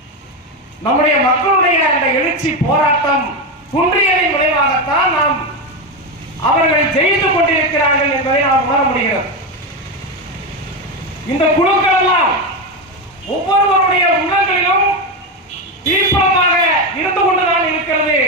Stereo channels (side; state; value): both; normal; correlation 0.12